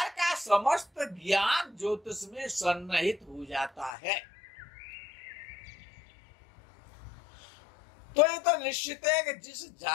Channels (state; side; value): drops out; right; at 3.9 s